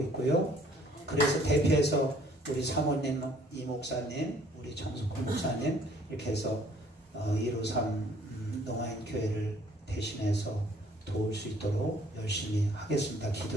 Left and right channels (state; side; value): normal; both; correlation 0.59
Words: 있고요. 그래서 대표해서 우리 사모님, 이 목사님, 우리 정숙훈 목사님 이렇게 해서 153 농아인 교회를 대신해서 도울 수 있도록 열심히 하겠습니다.